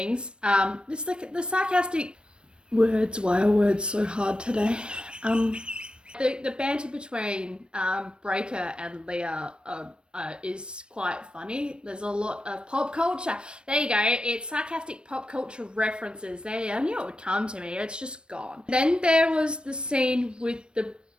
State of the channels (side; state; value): left; late; 0.055 ms